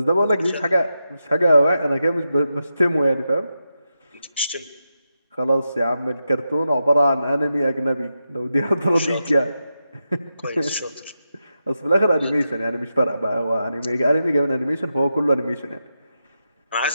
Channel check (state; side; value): inverted; both; correlation -0.88